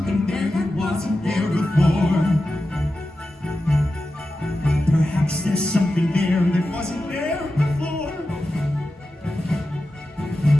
there that wasn't there before. Perhaps there's something there that wasn't there before.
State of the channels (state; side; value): normal; both; correlation 0.92